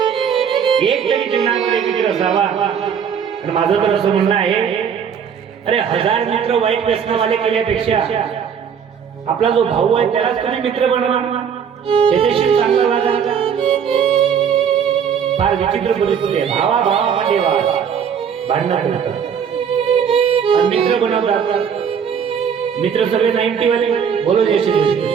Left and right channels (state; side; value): quieter; left; 7.5 dB